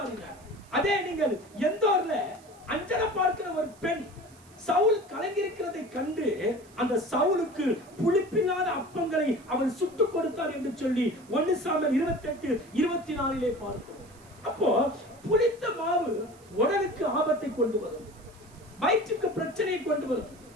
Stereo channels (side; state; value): right; noise; hiss, 26 dB below the sound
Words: அதே நீங்கள் எந்தோர்ல அஞ்சலை பார்க்கிற ஒரு பெண் சவுல் கலங்கியிருக்கிறதை கண்டு அந்த சவுலுக்கு புளிப்பில்லாத அப்பங்களை அவன் சுட்டு கொடுத்தார் என்று சொல்லி 1 சாமுவேல் 28:24 பார்க்கிறோம். அப்போ புளித்த மாவு உடலுக்கு ஆபத்தை கொண்டு வரும், வயிற்றுக்கு பிரச்சனையை கொண்டு வரும்.